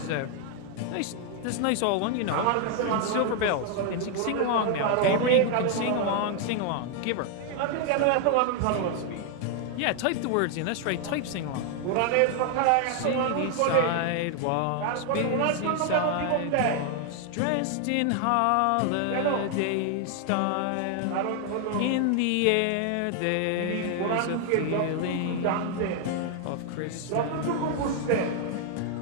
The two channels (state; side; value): different; both; correlation 0.00